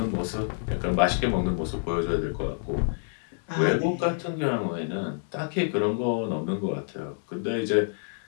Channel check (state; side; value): silent; right; digital silence